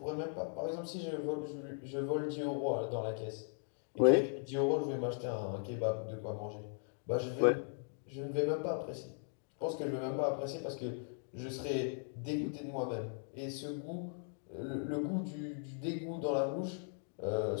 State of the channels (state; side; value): silent; right; 52 dB below the other